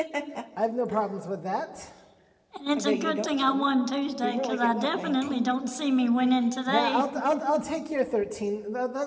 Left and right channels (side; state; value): both; identical; correlation 1.00